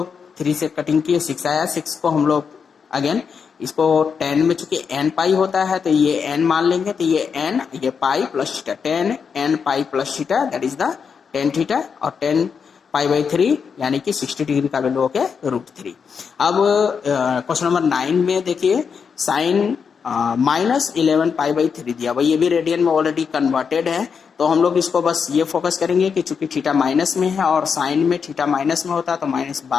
3 से कटिंग किए, 6 आया। 6 को हम लोग अगेन इसको 10 में, चूंकि n पाई होता है तो ये n मान लेंगे, तो ये n, ये पाई plus theta, 10 n pi plus theta, that is the 10 theta, और 10 पाई बाई 3 यानी कि 60 डिग्री का वैल्यू हो गया √3। अब क्वेश्चन नंबर 9 में देखिए साइन माइनस 11 पाई बाई 3 दिया हुआ, ये भी रेडियन में ऑलरेडी कन्वर्टेड है, तो हम लोग इसको बस ये फोकस करेंगे कि चूंकि थीटा माइनस में है और साइन में थीटा माइनस में होता है तो माइनस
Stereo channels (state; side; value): quieter; right; 6.2 dB